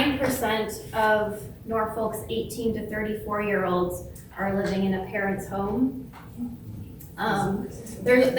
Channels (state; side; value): identical; both; correlation 1.00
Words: of Norfolk's 18 to 34-year-olds are living in a parent's home.